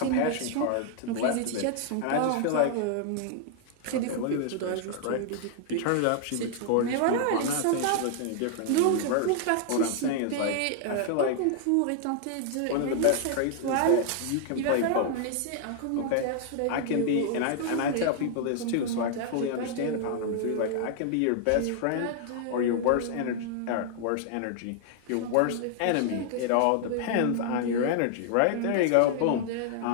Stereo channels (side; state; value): both; different; correlation 0.00